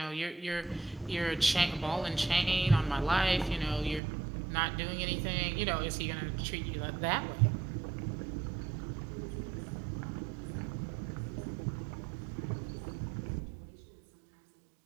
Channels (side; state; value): left; drops out; at 4.0 s